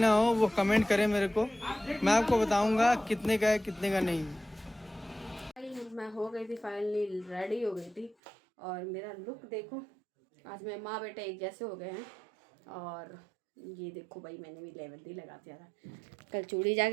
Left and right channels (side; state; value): left; drops out; at 8.2 s